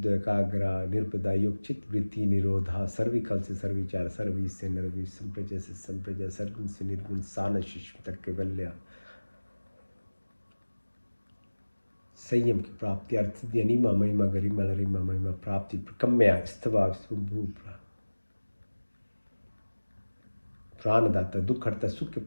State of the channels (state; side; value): inverted; both; correlation -1.00